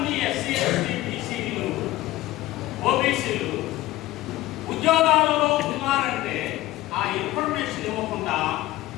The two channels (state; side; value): quieter; right; 16.6 dB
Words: ఎస్సీ, ఎస్టీ, బీసీలు